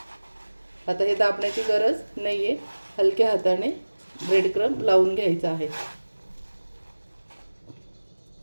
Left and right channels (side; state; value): both; inverted; correlation -1.00